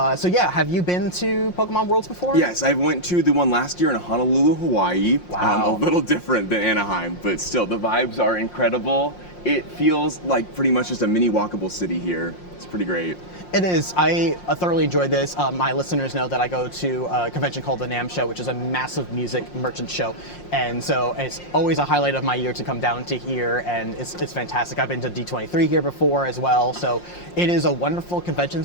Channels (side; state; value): right; late; 5.6 ms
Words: so yeah, have you been to Pokemon Worlds before? Yes, I went to the one last year in Honolulu, Hawaii. Wow. A little different than Anaheim, but still, the vibes are incredible. It feels like pretty much just a mini walkable city here. It's pretty great. It is. I thoroughly enjoyed this. My listeners know that I go to a convention called the NAMM Show, which is a massive music merchant show. And so it's always a highlight of my year to come down to here, and it's fantastic. I've been to D23 here before as well. So it is a wonderful convention